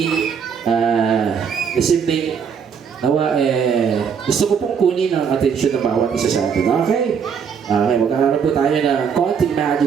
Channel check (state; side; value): quieter; left; 6.8 dB